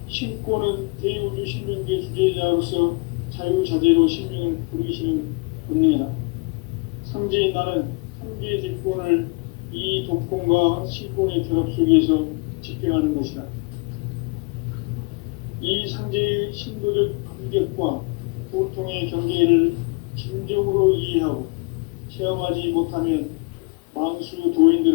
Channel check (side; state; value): right; quieter; 30.7 dB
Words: 신권은 대우주 신명계 주제자로서 자유자재로 신명을 부르시는 권능이다. 상제인 나는 상계의 직권을 이 독권과 신권의 결합 속에서 집행하는 것이다. 이 상제의 신도적 인격과 보통의 경계를 진정으로 이해하고 체험하지 못하면 만수